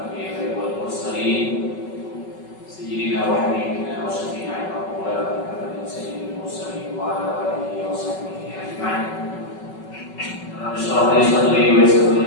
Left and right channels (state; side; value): late; right; 5.3 ms